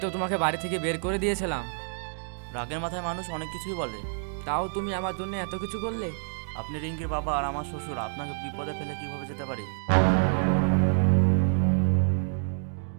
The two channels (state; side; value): silent; left; digital silence